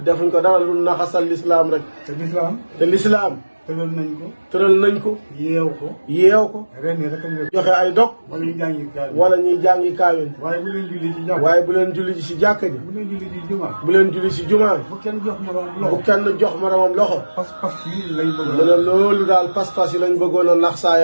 defuñ ko dara lu naxasal lislaam rek. te lislaam. te lislaam tëral nañ ko. tëral nañ ko. yeew ko. yeew ko. ren yi rek a joxe ay dog. wala ñu jàngi kaay. wala ñuy jàngi kaamil. waaye bu leen julli ci jàkk. waaye bu leen julli ci jàkka ji. bu leen julli ci jumaa. bu leen julli ci jumaa. bu kenn jox ma bu loxo. kenn jox moromam loxo. pas-pas yi lañ bëgg. mu ne loolu daal pas-pas yi lañ bëggoon a nax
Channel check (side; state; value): both; inverted; correlation -1.00